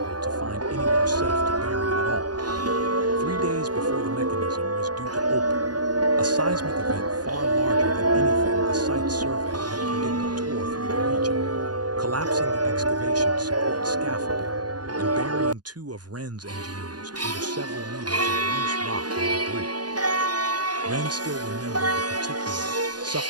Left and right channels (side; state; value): left; late; 0.69 ms